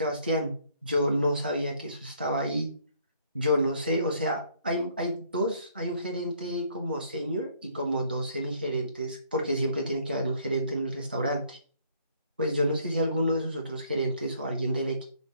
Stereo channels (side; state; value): both; inverted; correlation -0.63